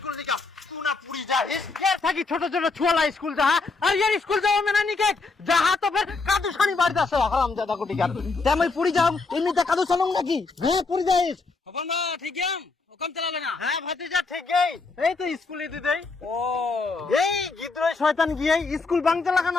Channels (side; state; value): right; quieter; 4.0 dB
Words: থাকি ছোট ছোট ছুয়ালা স্কুল যাহা, আর ইয়ার স্কুল যাওয়া মেনা নিকে যাহা তো ফের কাদু সানি বাড়িতে আসো হারাম দাদা কোটি গার। তেমন পুরি যাও, এমনিতে কাদু চালুম নাকি? হ্যাঁ পুরি যাইস। খবর না, ঠিক আছে হুকুম চালালে না। হ্যাঁ ভাতিজা ঠিকই, এই তো স্কুলে দিদেই। ও এই গিদ্রয় শয়তান গিয়ে স্কুল বাংতে লাগা